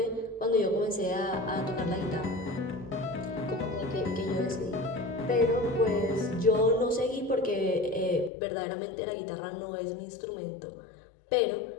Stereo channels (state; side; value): drops out; right; at 8.3 s